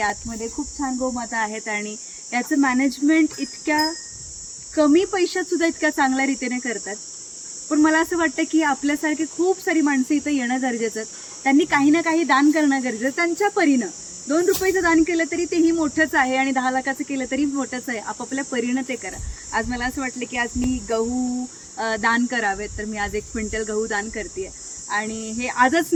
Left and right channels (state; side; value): identical; both; correlation 1.00